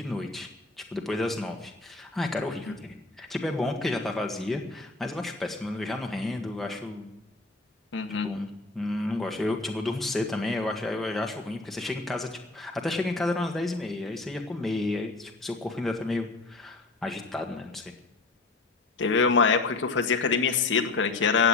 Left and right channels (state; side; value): quieter; right; 3.4 dB